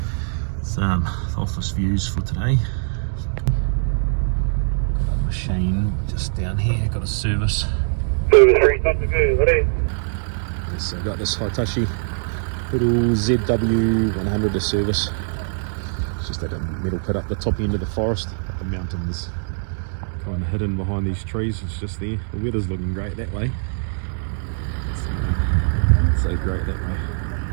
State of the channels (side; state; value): left; silent; digital silence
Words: It's the office views for today. Got a machine just down here, got a service. Service 3, something good, what is? Yes, I've got this Hitachi little ZW100 to service. It's just that metal pit up the top end of the forest. Up the mountains, kind of hidden behind these trees. It's just there. The weather's looking great that way. It's so great that way.